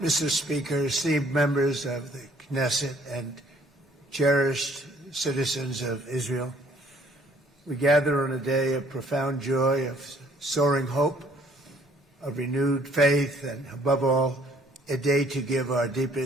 Mr. Speaker, esteemed members of the Knesset and cherished citizens of Israel, we gather on a day of profound joy, of soaring hope, of renewed faith, and above all, a day to give our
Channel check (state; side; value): normal; both; correlation 0.60